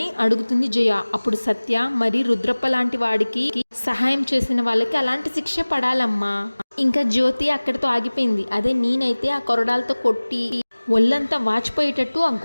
అడుగుతుంది జయ. అప్పుడు సత్య, మరి రుద్రప్ప లాంటి వాడికి సహాయం చేసిన వాళ్ళకి అలాంటి శిక్ష పడాలమ్మా. ఇంకా జ్యోతి అక్కడితో ఆగిపోయింది. అదే నేనైతే ఆ కొరడాలతో కొట్టి ఒళ్ళంతా వాచిపోయేటట్టు ఆ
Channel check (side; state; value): both; inverted; correlation -1.00